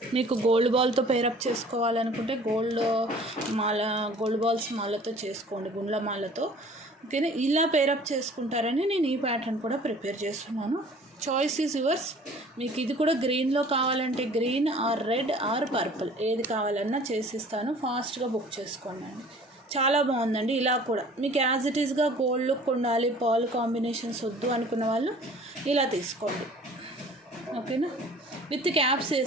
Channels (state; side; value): normal; both; correlation 0.49